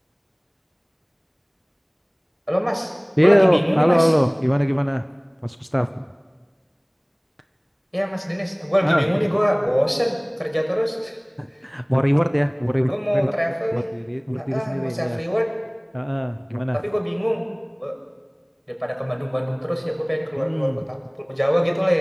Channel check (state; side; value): identical; both; correlation 1.00